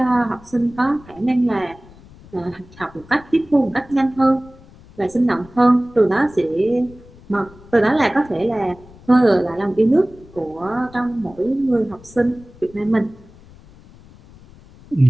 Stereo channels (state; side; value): noise; left; rumble, 23 dB below the sound